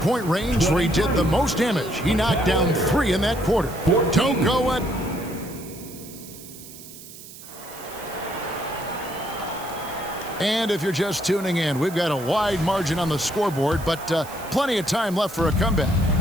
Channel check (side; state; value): right; noise; hiss, 16 dB below the sound